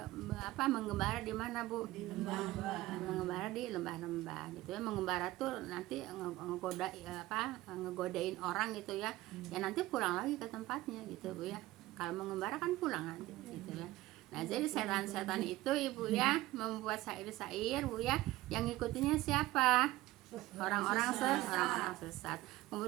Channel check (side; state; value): left; quieter; 17.4 dB